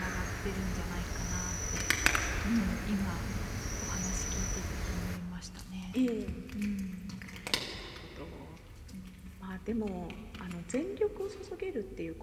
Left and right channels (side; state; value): both; identical; correlation 1.00